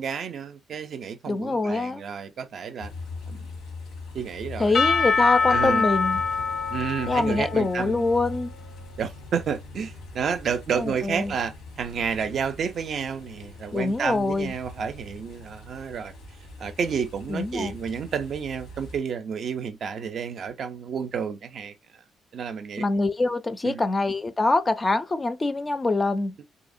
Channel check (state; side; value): normal; both; correlation 0.83